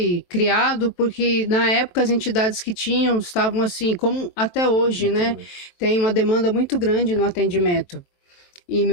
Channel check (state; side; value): late; right; 23 ms